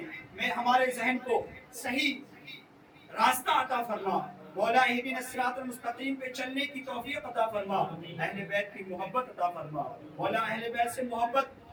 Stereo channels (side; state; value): both; identical; correlation 1.00